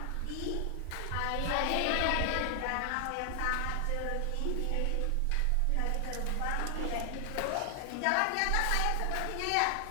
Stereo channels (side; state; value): both; different; correlation 0.00